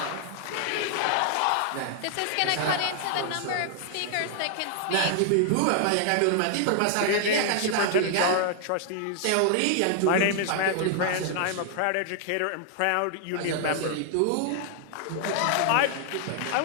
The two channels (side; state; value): both; different; correlation 0.00